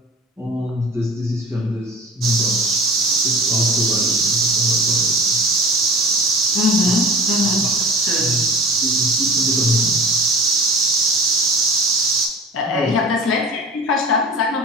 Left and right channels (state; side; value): normal; both; correlation 0.38